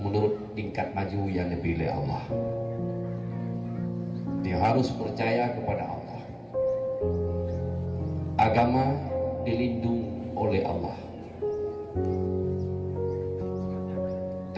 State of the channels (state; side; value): identical; both; correlation 1.00